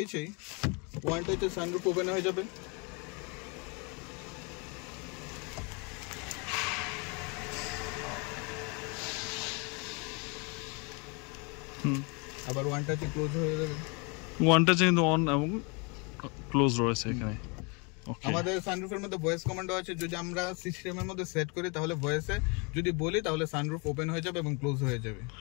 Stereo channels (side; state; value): right; quieter; 31.7 dB